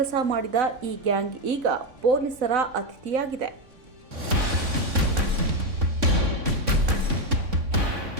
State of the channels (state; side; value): late; left; 3.6 ms